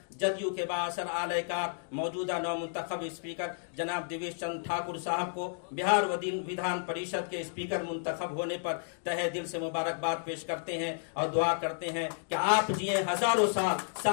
جدیو کے بااثر اعلی کار، موجودہ نو منتخب اسپیکر جناب دیویش چندر ٹھاکر صاحب کو بہار ودھان پریشد کے اسپیکر منتخب ہونے پر تہہ دل سے مبارکباد پیش کرتے ہیں اور دعا کرتے ہیں کہ آپ جئیں ہزاروں سال،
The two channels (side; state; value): right; silent; digital silence